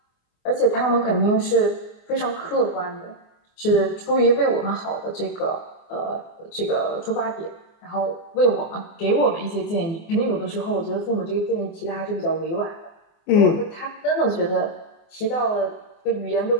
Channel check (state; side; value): late; right; 24 ms